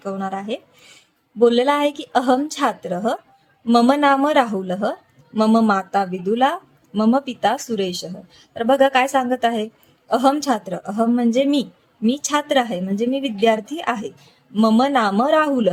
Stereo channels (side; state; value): both; identical; correlation 1.00